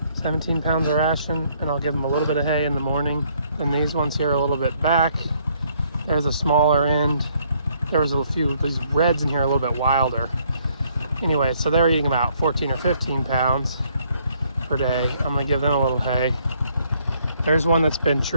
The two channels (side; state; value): both; inverted; correlation -0.67